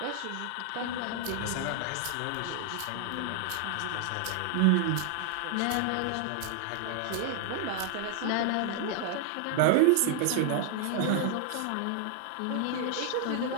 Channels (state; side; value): different; both; correlation 0.00